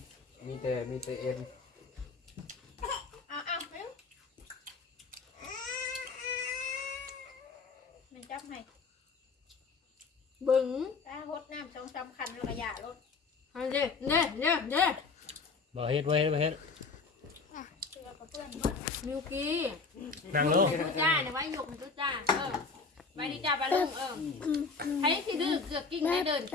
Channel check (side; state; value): right; quieter; 4.5 dB